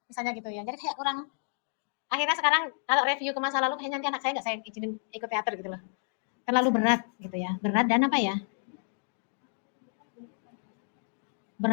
Misalnya gitu ya. Jadi kayak kurang, akhirnya sekarang kalau review ke masa lalu kayaknya nanti anak saya nggak saya izinin ikut teater gitu loh. Terlalu berat gitu ya. Berat dan apa ya?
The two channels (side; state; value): right; silent; digital silence